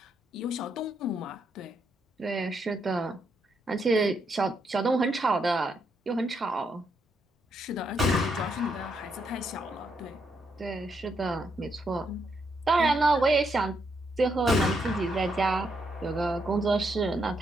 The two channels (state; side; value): normal; both; correlation 0.78